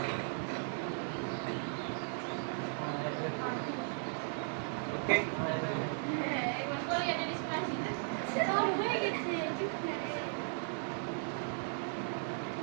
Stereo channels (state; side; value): silent; left; 53 dB below the other